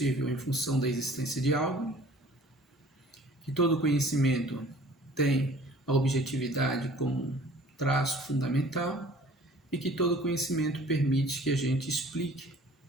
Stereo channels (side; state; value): both; normal; correlation 0.50